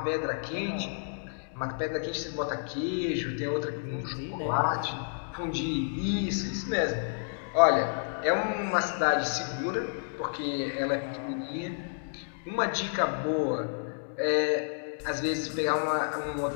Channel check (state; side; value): silent; right; digital silence